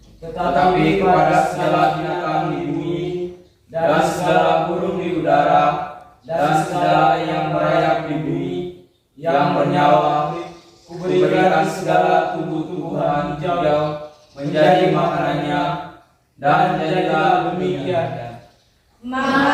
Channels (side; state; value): both; identical; correlation 1.00